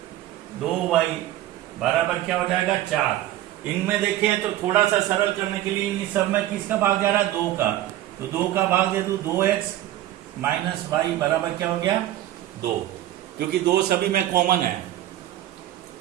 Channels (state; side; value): quieter; left; 13.9 dB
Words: 2y बराबर क्या हो जाएगा 4। इनमें देखें तो थोड़ा सा सरल करने के लिए इन सब में किसका भाग जा रहा है 2 का, तो 2 का भाग दे दूं, 2x माइनस वाई बराबर क्या हो गया 2, क्योंकि 2 सभी में कॉमन है